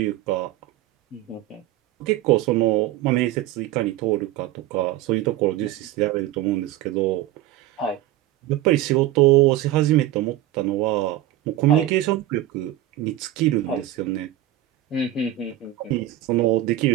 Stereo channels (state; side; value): quieter; left; 13.8 dB